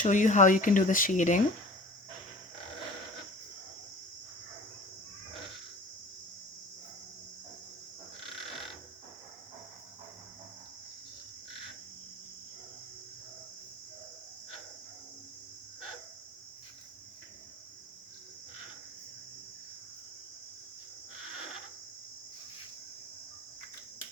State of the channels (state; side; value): normal; both; correlation 0.43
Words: you how you can do the shading.